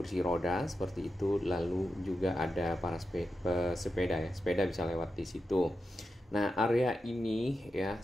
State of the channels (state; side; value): normal; both; correlation 0.89